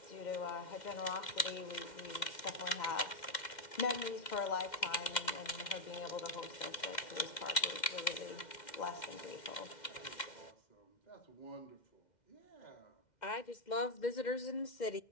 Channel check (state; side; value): late; right; 2.1 ms